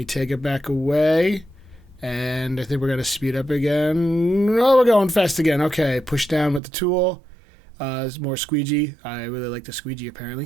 take it back away, and I think we're going to speed up again. Oh, we're going fast again. Okay, push down with the tool. There's more squeegee. I really like the squeegee,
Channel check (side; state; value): left; drops out; at 6.6 s